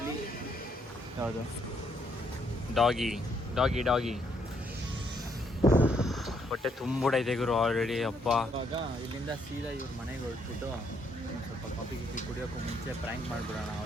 ಯಾವುದು ಡಾಗಿ ಹೊಟ್ಟೆ ತುಂಬಿಡೈತೆ ಗುರು ಆಲ್ರೆಡಿ. ಅಪ್ಪ ಇವಾಗ ಇಲ್ಲಿಂದ ಸೀದಾ ಇವ್ರ ಮನೆಗೆ ಹೊರಟ್ಬಿಟ್ಟು ಸ್ವಲ್ಪ ಕಾಫಿ ಕುಡಿಯೋಕ್ಕೂ ಮುಂಚೆ ಪ್ರ್ಯಾಂಕ್ ಮಾಡಿಬಿಡೋಣ,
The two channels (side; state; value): both; normal; correlation 0.72